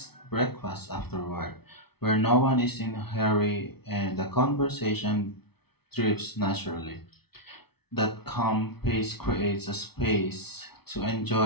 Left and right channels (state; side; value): late; right; 0.97 ms